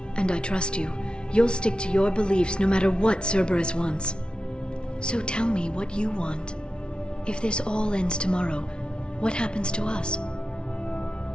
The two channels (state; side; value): late; right; 0.056 ms